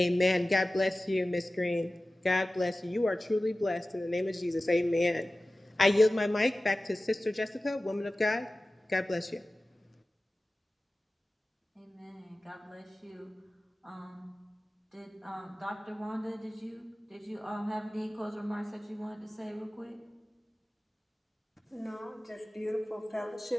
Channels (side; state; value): both; normal; correlation 0.96